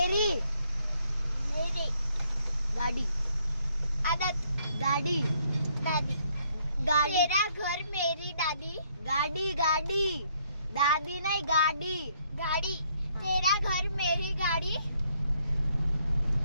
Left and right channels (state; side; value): inverted; both; correlation -0.69